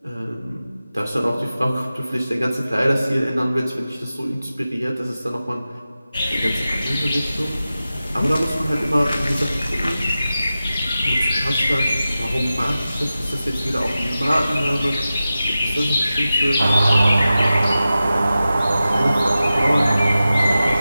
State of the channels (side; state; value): both; inverted; correlation -0.94